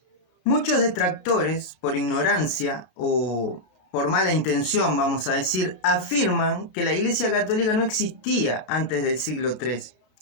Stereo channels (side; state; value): right; late; 33 ms